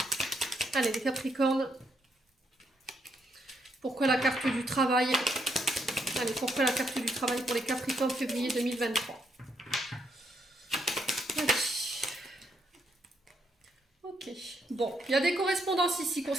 Allez, les Capricornes. Pourquoi la carte du travail? Allez, pourquoi la carte du travail pour les Capricornes février 2023? Allez. Ok. Bon, il y a des correspondances ici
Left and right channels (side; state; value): both; normal; correlation 0.76